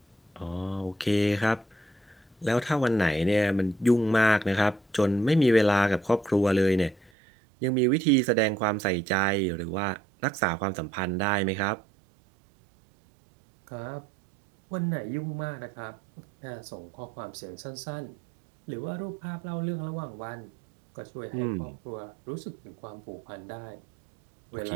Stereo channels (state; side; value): drops out; left; at 7.1 s